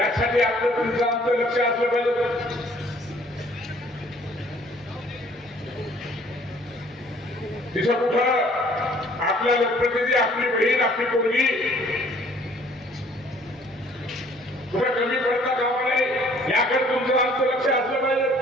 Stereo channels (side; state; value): both; normal; correlation 0.57